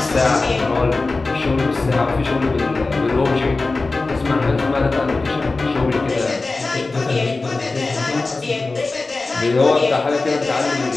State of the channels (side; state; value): right; quieter; 3.5 dB